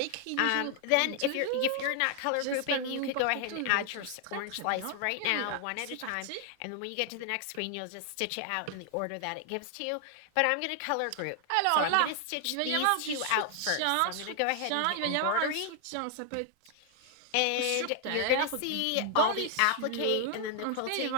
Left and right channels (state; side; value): different; both; correlation 0.00